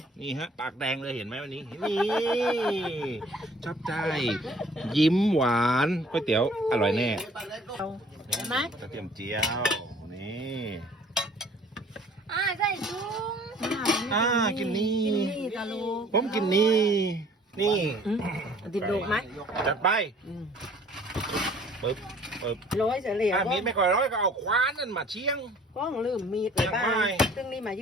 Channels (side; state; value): both; normal; correlation 0.54